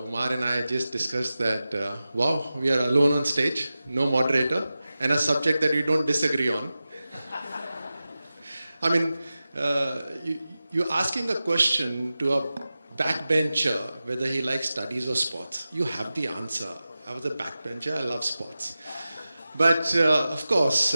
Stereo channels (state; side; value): inverted; both; correlation -0.94